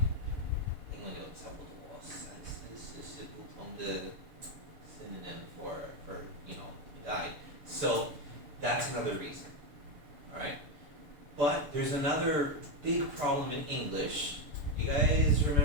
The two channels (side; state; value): left; late; 6.9 ms